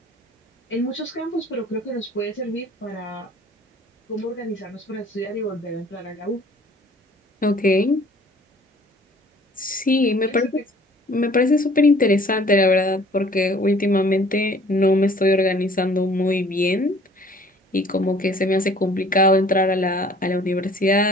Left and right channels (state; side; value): normal; both; correlation 0.53